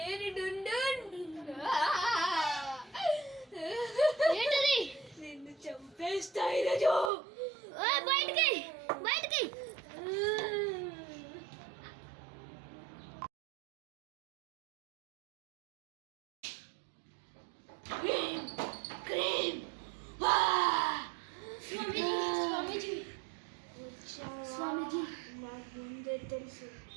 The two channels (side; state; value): left; drops out; at 7.1 s